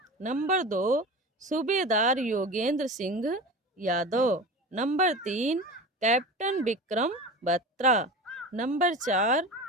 Number 2 subedar Yogendra Singh Yadav. Number 3 captain Vikram Batra. Number 4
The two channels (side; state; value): both; normal; correlation 0.31